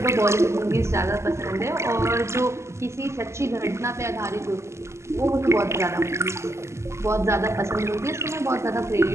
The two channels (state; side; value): late; left; 0.13 ms